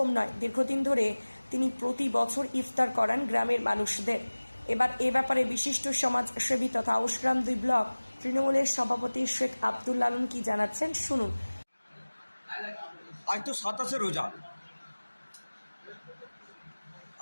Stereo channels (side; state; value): both; inverted; correlation -1.00